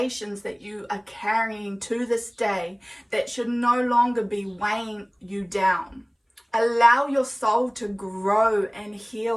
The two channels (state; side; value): identical; both; correlation 1.00